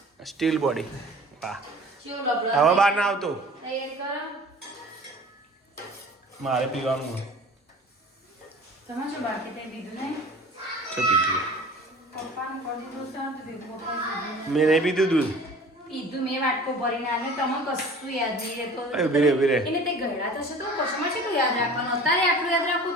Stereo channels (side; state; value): both; normal; correlation 0.44